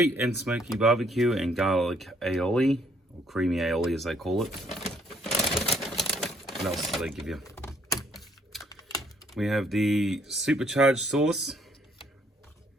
and smoky barbecue and garlic aioli, or creamy aioli as they call it. What else do they give you? We have the supercharged sauce,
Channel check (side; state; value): both; normal; correlation 0.67